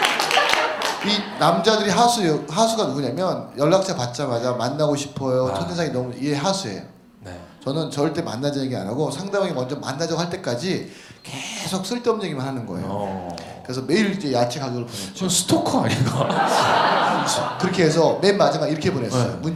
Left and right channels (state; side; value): identical; both; correlation 1.00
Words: 이 남자들이 하수가 누구냐면 연락처 받자마자 만나고 싶어요. 첫인상이 너무 이게 하수예요. 네. 저는 절대 만나자 얘기 안 하고 상대방이 먼저 만나자고 할 때까지 계속 쓸데없는 얘기만 하는 거예요. 그래서 매일 이제 야채 가격을 보냈죠. 저 스토커 아닌가? 그렇게 해서 맨 마지막 이렇게 보냈어요. 네.